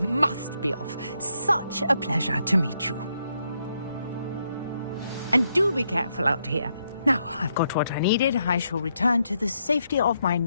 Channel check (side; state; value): both; inverted; correlation -0.78